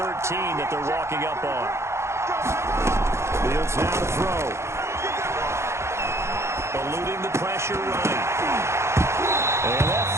that they're walking up on. Fields now to throw. Eluding the pressure right. And that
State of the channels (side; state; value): left; late; 0.13 ms